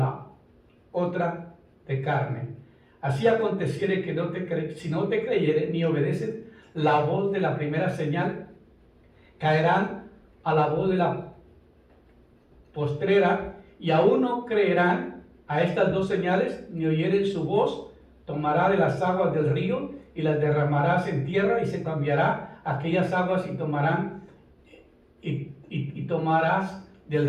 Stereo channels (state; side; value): identical; both; correlation 1.00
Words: otra de carne. Así aconteciere que si no te creyere ni obedecen la voz de la primera señal, caerán a la voz de la postrera, y aún no creerán a estas 2 señales, ni oyeren su voz. Tomará de las aguas del río y las derramarás en tierra, y se cambiará aquellas aguas y tomarás del